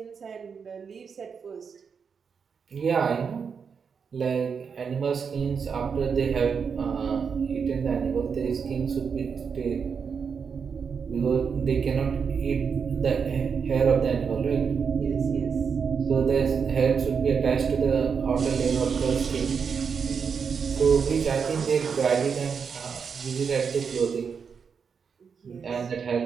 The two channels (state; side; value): quieter; left; 6.2 dB